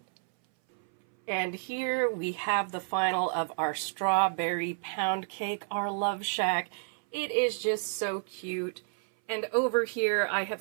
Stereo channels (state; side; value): silent; left; 58 dB below the other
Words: And here we have the final of our strawberry pound cake, our Love Shack. It is just so cute. And over here, I